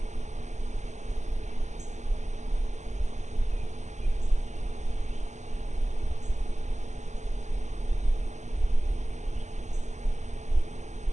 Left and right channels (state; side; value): late; left; 0.34 ms